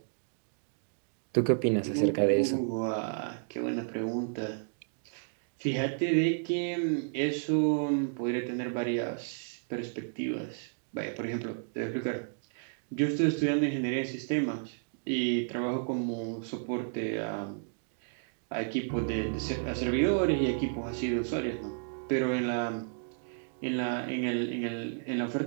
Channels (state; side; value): silent; left; digital silence